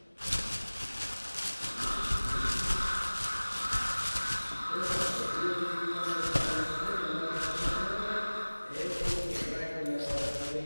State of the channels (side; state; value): both; inverted; correlation -1.00